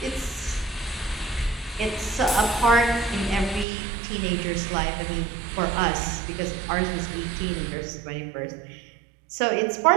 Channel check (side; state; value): left; drops out; at 3.7 s